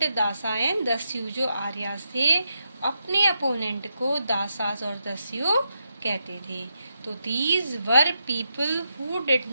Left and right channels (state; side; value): inverted; both; correlation -0.84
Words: dasa and dasyu. जो आर्यस थे अपने अपोनेंट को दासास और दस्यु कहते थे। तो these were people who did